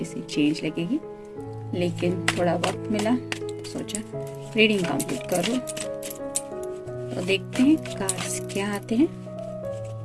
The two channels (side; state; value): both; identical; correlation 1.00